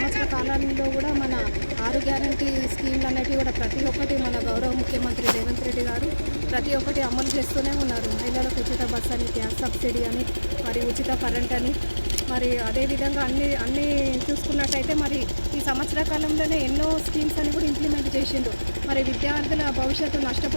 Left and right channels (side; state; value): both; inverted; correlation -1.00